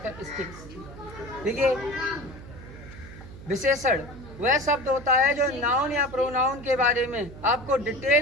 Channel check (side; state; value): right; noise; hum, 15 dB below the sound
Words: ठीक है, विशेषण वह शब्द होता है जो नाउन या प्रोनाउन के बारे में आपको